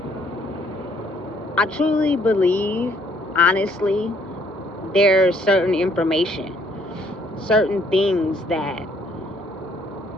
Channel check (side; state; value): both; normal; correlation 0.64